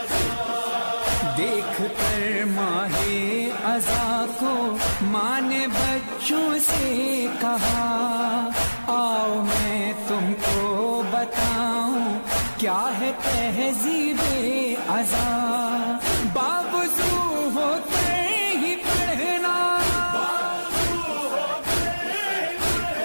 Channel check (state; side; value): inverted; both; correlation -1.00